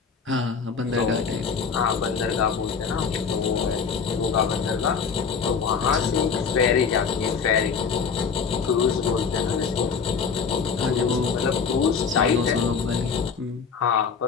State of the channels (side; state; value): right; quieter; 5.9 dB